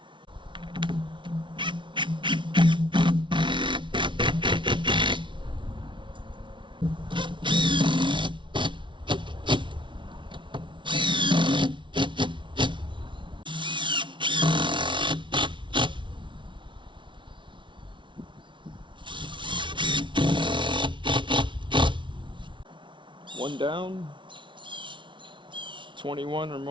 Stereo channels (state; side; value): late; left; 0.24 ms